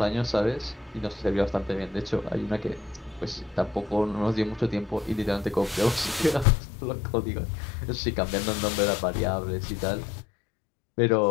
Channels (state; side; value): drops out; right; at 6.5 s